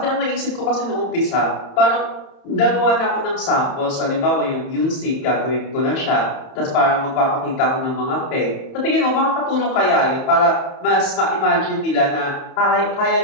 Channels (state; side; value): late; right; 30 ms